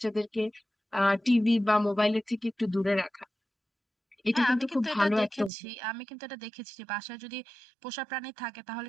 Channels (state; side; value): drops out; left; at 5.5 s